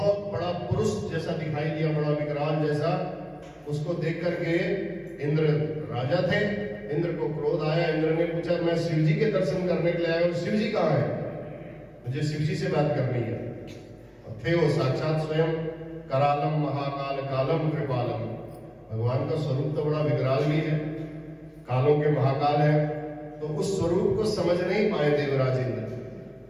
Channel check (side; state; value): both; identical; correlation 1.00